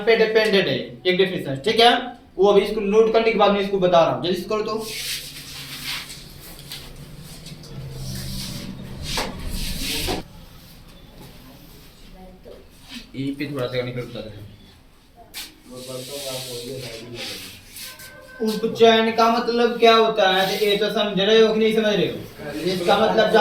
पे डिपेंडेंट है, एक डेफिनेशन, ठीक है। वो अभी इसको नोट करने के बाद मैं इसको बता रहा हूँ, जल्दी से करो तो। ई पे थोड़ा सा निकल बता रहे हैं। उपचयन का मतलब क्या होता है, तो ये तो समझ रहे हो कि नहीं समझ रहे हो? इसका मतलब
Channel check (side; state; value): both; identical; correlation 1.00